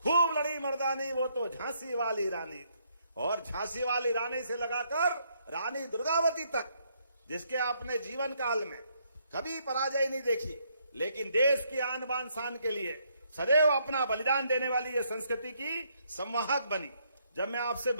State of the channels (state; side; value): inverted; both; correlation -0.72